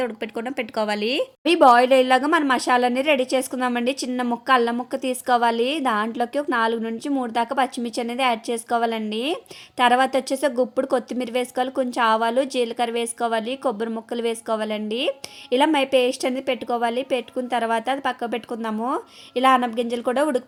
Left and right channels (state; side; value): identical; both; correlation 1.00